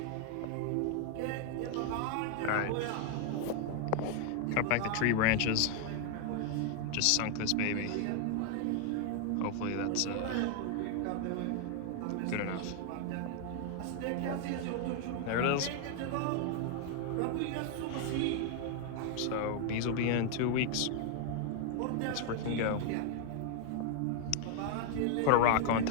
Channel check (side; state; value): both; different; correlation 0.00